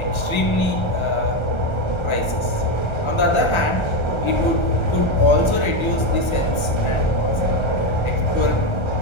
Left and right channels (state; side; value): late; right; 1.3 ms